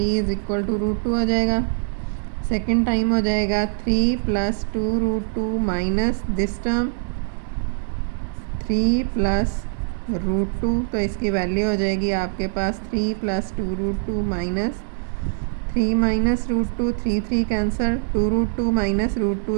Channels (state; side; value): silent; left; digital silence